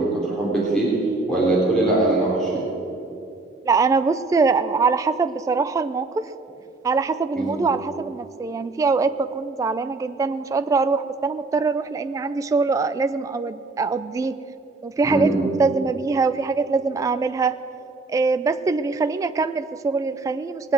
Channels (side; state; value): left; quieter; 3.5 dB